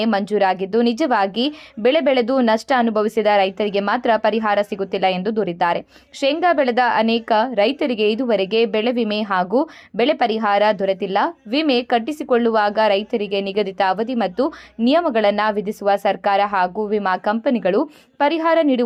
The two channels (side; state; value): both; identical; correlation 1.00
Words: ಮಂಜೂರಾಗಿದ್ದು, ನಿಜವಾಗಿ ಬೆಳೆ ಬೆಳೆದು ನಷ್ಟ ಅನುಭವಿಸಿದ ರೈತರಿಗೆ ಮಾತ್ರ ಪರಿಹಾರ ಸಿಗುತ್ತಿಲ್ಲ ಎಂದು ದೂರಿದ್ದಾರೆ. ಶೇಂಗಾ ಬೆಳೆದ ಅನೇಕ ರೈತರಿಗೆ ಇದುವರೆಗೆ ಬೆಳೆ ವಿಮೆ ಹಾಗೂ ಬೆಳೆ ಪರಿಹಾರ ದೊರೆತಿಲ್ಲ. ವಿಮೆ ಕಟ್ಟಿಸಿಕೊಳ್ಳುವಾಗ ರೈತರಿಗೆ ನಿಗದಿತ ಅವಧಿ ಮತ್ತು ನಿಯಮಗಳನ್ನು ವಿಧಿಸುವ ಸರ್ಕಾರ ಹಾಗೂ ವಿಮಾ ಕಂಪನಿಗಳು ಪರಿಹಾರ